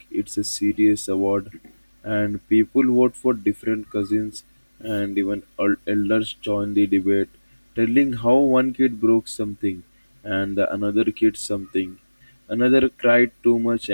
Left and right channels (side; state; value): both; inverted; correlation -1.00